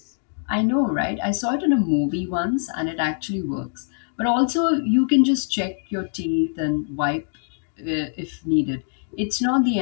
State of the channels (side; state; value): right; silent; digital silence